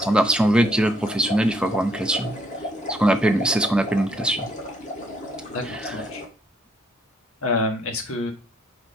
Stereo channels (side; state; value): both; normal; correlation 0.70